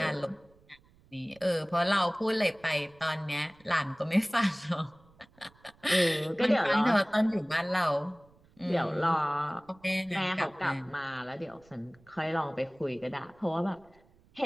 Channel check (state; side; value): noise; right; rumble, 29 dB below the sound